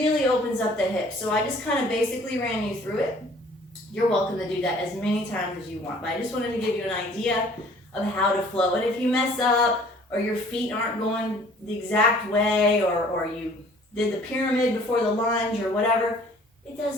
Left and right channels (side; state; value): both; normal; correlation 0.54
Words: opens up the hips. So I just kind of basically ran you through it. You're welcome to do that as many times as you want, but I just wanted to give you an idea of how to flow. And if you mess up, or your feet aren't going the exact way, or you did the pyramid before the lunge or whatever, it